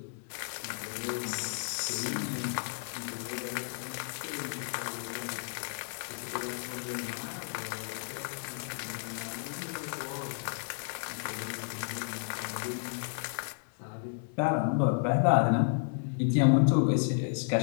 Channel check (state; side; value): silent; right; digital silence